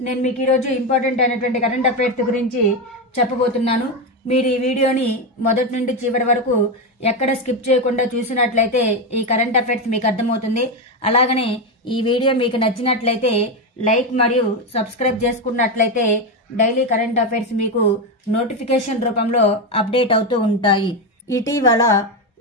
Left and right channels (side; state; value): both; normal; correlation 0.10